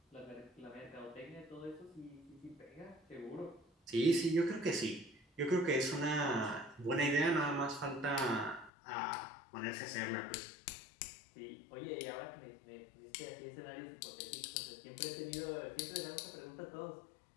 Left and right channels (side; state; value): right; drops out; at 8.7 s